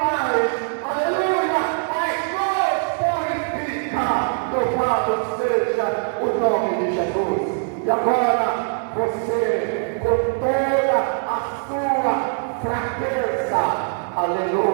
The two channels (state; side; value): silent; left; digital silence